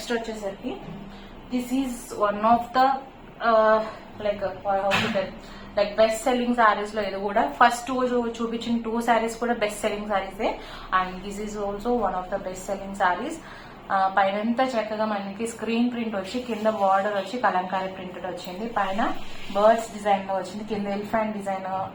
వచ్చేసరికి this is one of the like best selling saris లో ఇది కూడా. First చూపించిన 2 సారీస్ కూడా బెస్ట్ సెల్లింగ్ సారీసే and this is also one of the best selling saris. పైనంతా చక్కగా మనకి స్క్రీన్ ప్రింట్ వచ్చి, కింద బార్డర్ వచ్చి కలంకారీ ప్రింటెడ్ వచ్చింది, పైన బర్డ్స్ డిజైన్ లో వచ్చింది, కింద elephant design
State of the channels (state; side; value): identical; both; correlation 1.00